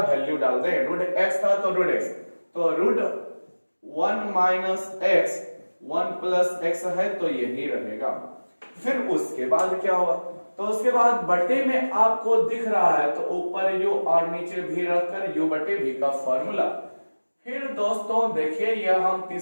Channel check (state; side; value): inverted; both; correlation -1.00